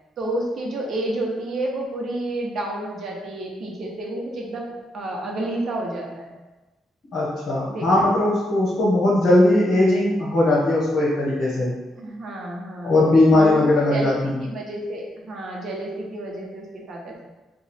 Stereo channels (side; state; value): both; normal; correlation 0.80